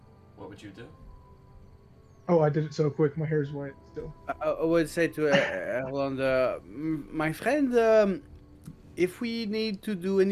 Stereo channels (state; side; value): identical; both; correlation 1.00